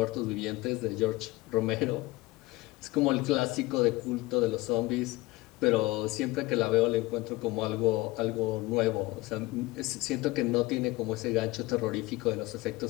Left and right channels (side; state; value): right; quieter; 20.4 dB